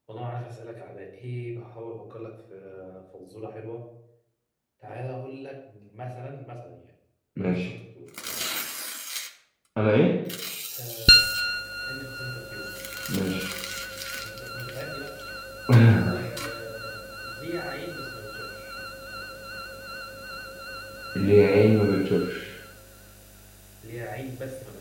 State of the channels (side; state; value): both; identical; correlation 1.00